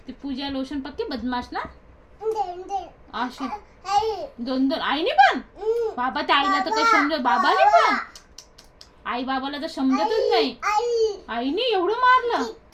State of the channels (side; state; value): both; identical; correlation 1.00